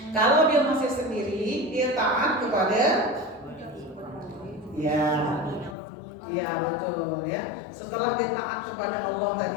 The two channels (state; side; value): drops out; right; at 5.8 s